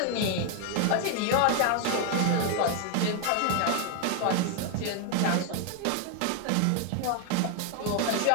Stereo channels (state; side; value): different; both; correlation 0.01